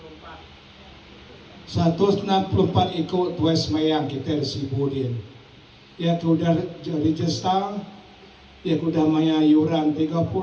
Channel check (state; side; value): identical; both; correlation 1.00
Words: 164 ikut kue semayang kita di Sibudin. Ya sudah register, ya sudah maya yuran 30,